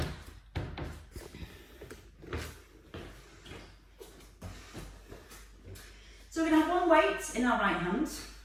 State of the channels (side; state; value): both; identical; correlation 1.00